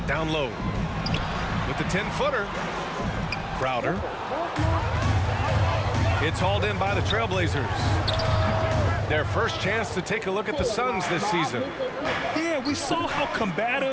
Down low. With the 10-footer. Crowder. It's hauled in by the Trailblazers. Their first chance to take a look at the Suns this season. Yeah, we saw how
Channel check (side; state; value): both; identical; correlation 1.00